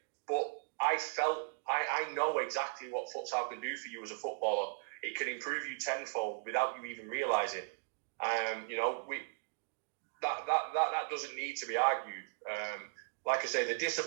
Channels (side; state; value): left; silent; digital silence